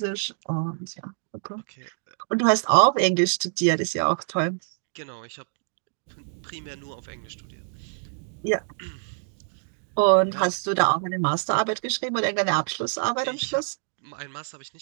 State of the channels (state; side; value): silent; left; digital silence